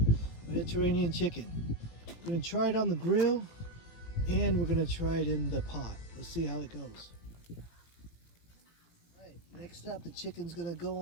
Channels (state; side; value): late; right; 17 ms